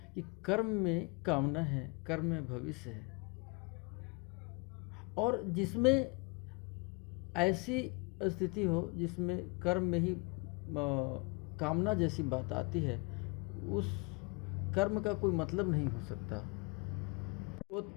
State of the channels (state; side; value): quieter; right; 30.4 dB